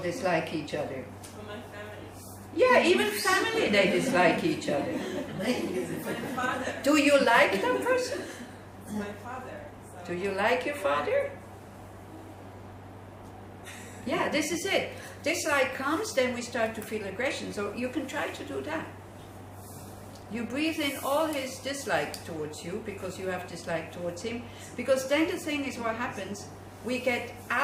each other. For my family. Yeah, even family, they dislike each other. My father. Do you like that person? My father. So. Do you like your father? Yeah, this is it. Dislike comes, then we start to feel aggression. So you can try to do that. You breathe in all his dislike towards you because you have dislike towards him. Because then the thing is, what happens, we get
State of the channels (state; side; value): identical; both; correlation 1.00